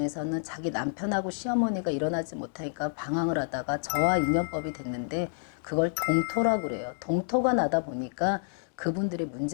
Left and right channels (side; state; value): right; silent; digital silence